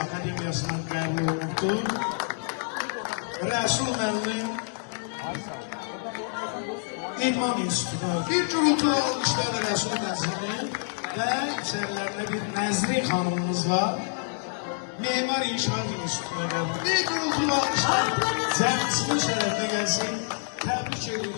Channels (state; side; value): silent; right; digital silence